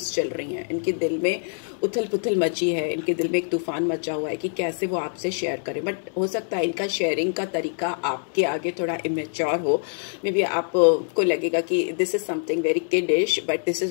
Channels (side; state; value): right; silent; 62 dB below the other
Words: चल रही हैं, इनके दिल में उथल पुथल मची है, इनके दिल में एक तूफान मचा हुआ है कि कैसे वो आपसे शेयर करें। बट हो सकता है इनका शेयरिंग का तरीका आपके आगे थोड़ा इमेच्योर हो। मे बी आपको लगेगा कि this is something very kiddish, but this